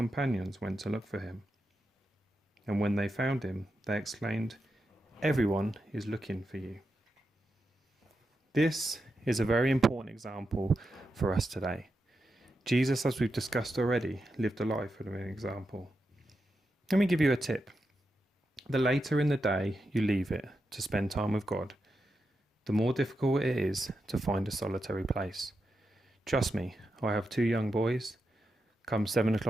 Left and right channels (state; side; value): normal; both; correlation 0.87